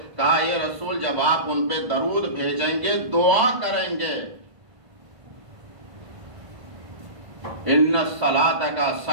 کہا یہ رسول جب آپ ان پہ درود بھیجیں گے، دعا کریں گے، ان الصلاۃ کا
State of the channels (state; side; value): late; left; 1.5 ms